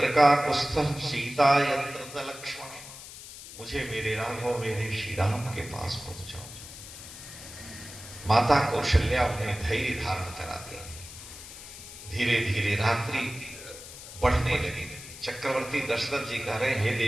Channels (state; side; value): noise; left; hiss, 14 dB below the sound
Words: का कुस्थः सीता यत्र च लक्ष्मण, मुझे मेरे राघव मेरे श्री राम के पास पहुंचाओ। माता कौशल्या उन्हें धैर्य धारण कराती। धीरे धीरे रात्रि बढ़ने लगी। चक्रवर्ती दशरथ जी कह रहे, हे